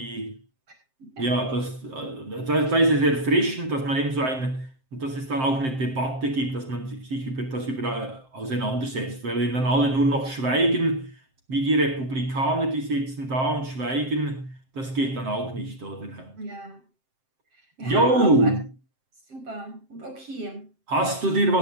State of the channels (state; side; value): late; left; 7.6 ms